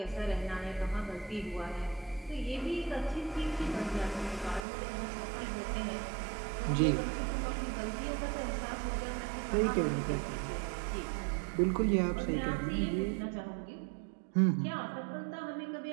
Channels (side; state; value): left; drops out; at 4.7 s